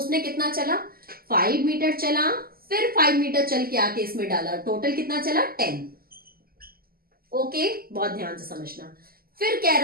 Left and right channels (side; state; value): left; late; 0.43 ms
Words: कितना चला, 5 मीटर चला, फिर 5 मीटर चल के आके इसमें डाला, टोटल कितना चला, 10। ओके, बहुत ध्यान से समझना। फिर कह